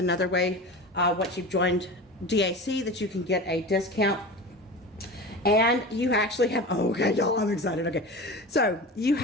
way, once you've joined DAC, that you can get a discount. And you actually have, oh, okay, y'all, I'm excited, okay. So you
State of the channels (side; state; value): both; normal; correlation 0.31